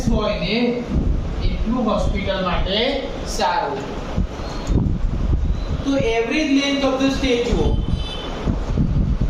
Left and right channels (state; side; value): identical; both; correlation 1.00